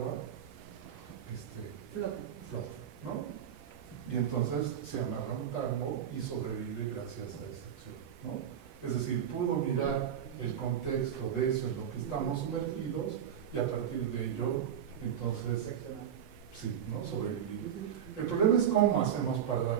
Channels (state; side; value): quieter; left; 9.1 dB